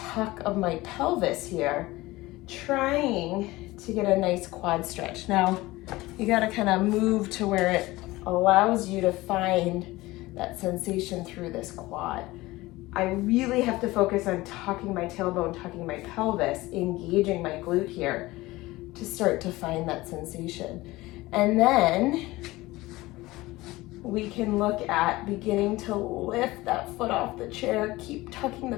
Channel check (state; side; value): quieter; right; 19.5 dB